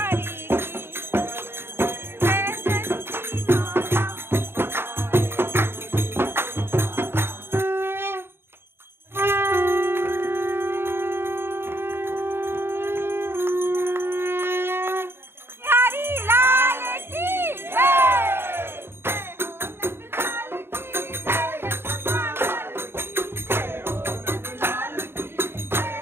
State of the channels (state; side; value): late; left; 0.11 ms